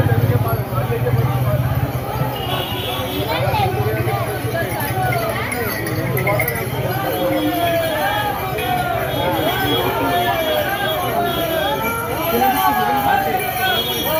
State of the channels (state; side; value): identical; both; correlation 1.00